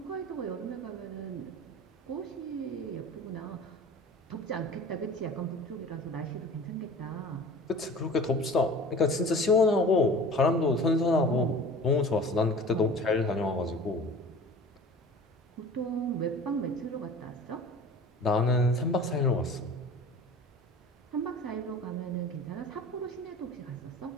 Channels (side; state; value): both; normal; correlation 0.41